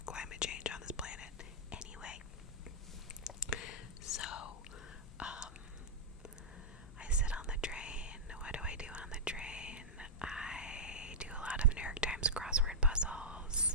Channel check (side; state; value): both; normal; correlation -0.09